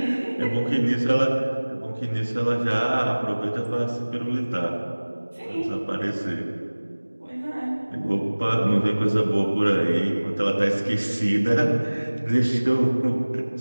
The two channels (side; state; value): both; inverted; correlation -1.00